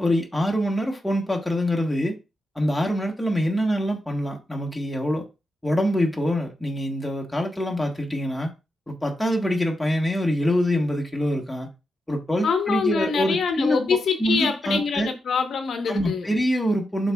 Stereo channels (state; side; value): normal; both; correlation 0.86